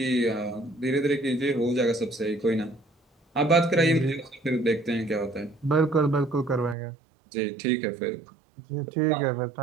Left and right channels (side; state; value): left; drops out; at 6.8 s